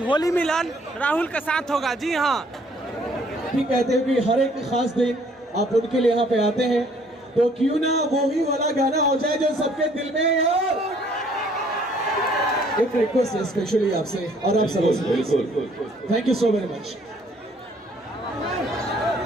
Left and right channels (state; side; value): normal; both; correlation 0.61